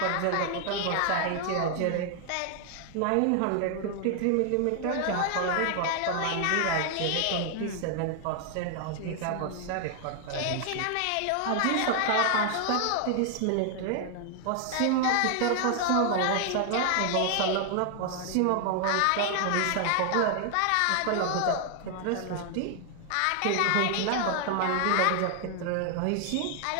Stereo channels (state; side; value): different; both; correlation 0.00